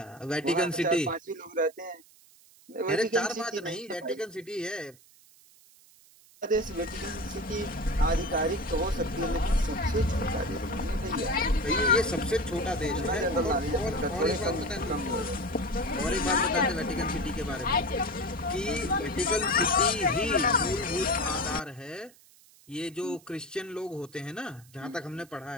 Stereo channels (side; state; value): right; noise; hiss, 26 dB below the sound